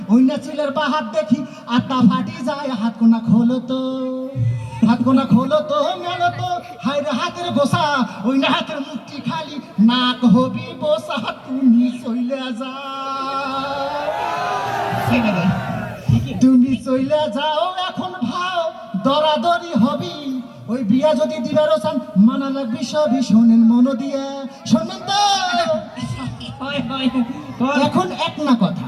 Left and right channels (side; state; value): both; identical; correlation 1.00